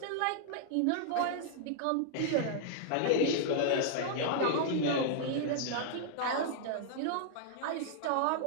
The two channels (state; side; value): different; both; correlation -0.01